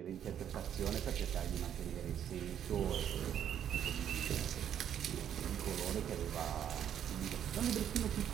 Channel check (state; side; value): quieter; left; 9.6 dB